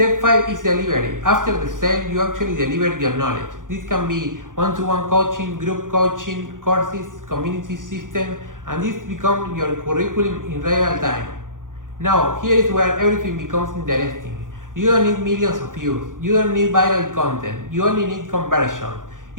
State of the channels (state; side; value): late; left; 0.89 ms